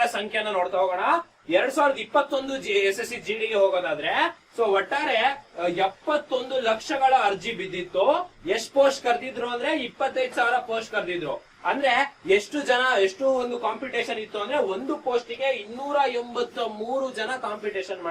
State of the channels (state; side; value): identical; both; correlation 1.00